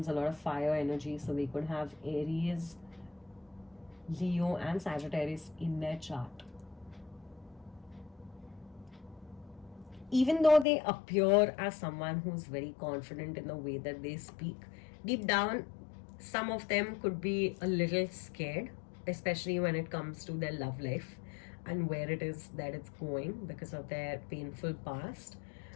a lot of fire energy. So they could have Aries, Leo, and Sagittarius in their chart. Even though they appear as someone who's very confident in the way that they speak, deep down, some of them could be a little scared, especially when it comes to their love life and where it is that it's going because of their painful past.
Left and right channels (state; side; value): drops out; right; at 10.7 s